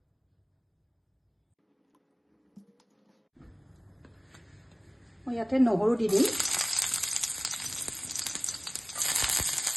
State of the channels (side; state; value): both; identical; correlation 1.00